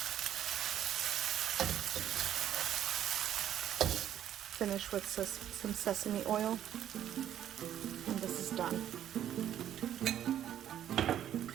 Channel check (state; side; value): quieter; left; 10.8 dB